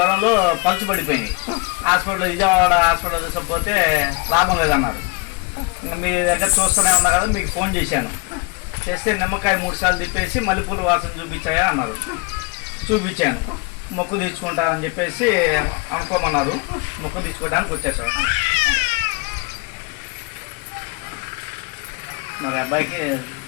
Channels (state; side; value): quieter; right; 29.2 dB